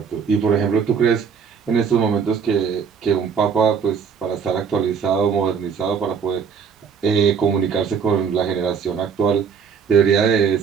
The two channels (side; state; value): left; quieter; 6.5 dB